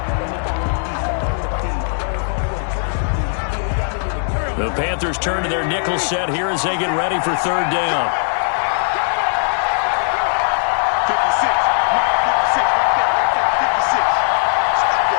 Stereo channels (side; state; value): right; silent; digital silence